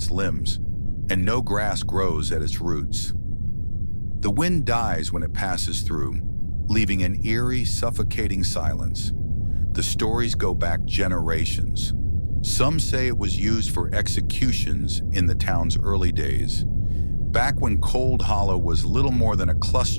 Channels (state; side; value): inverted; both; correlation -1.00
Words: limbs, and no grass grows at its roots. The wind dies when it passes through, leaving an eerie, suffocating silence. The stories go back generations. Some say it was used for executions in the town's early days, back when Cold Hollow was little more than a